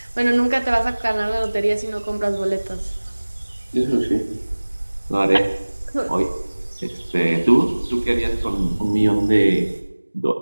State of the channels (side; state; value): both; inverted; correlation -1.00